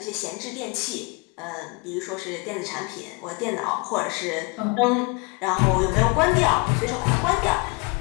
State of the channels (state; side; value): quieter; right; 29.9 dB